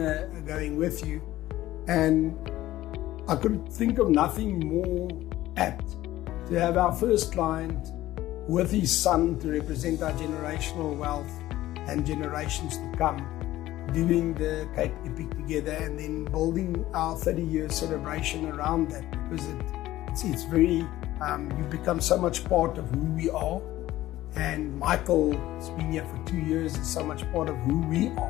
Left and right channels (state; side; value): quieter; right; 15.3 dB